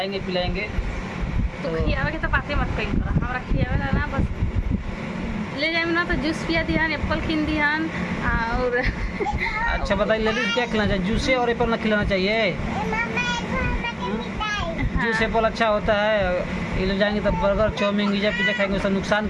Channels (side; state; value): both; identical; correlation 1.00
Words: पिलाएंगे। तो खियावे के तो बातें मत कही, हमरा खियावे ना बस ले जाए ना। तो जूस पिया दिहन, एप्पल खिन दिहन और अच्छा बताइए लेडीज, क्या खिलाना चाहिए? जूस और एप्पल ना खिलाना चाहिए? जूस एप्पल अच्छा होता है। ये लोग जाएंगे तो बर्गर चाउमीन पिज्जा खाएंगे, उसका नुकसान